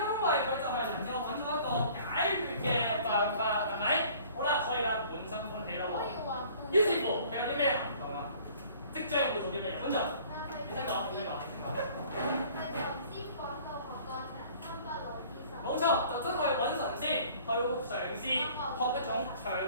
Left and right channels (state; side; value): inverted; both; correlation -0.52